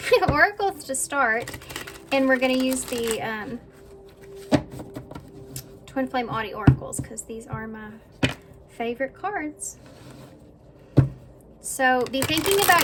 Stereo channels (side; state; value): both; identical; correlation 1.00